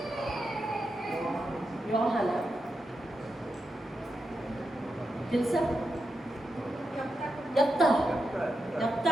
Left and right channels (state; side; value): normal; both; correlation 0.87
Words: యోహానా తెలుసా? యెఫ్తా.